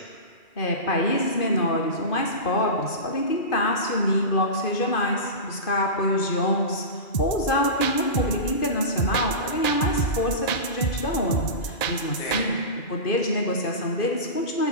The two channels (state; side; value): late; right; 2.4 ms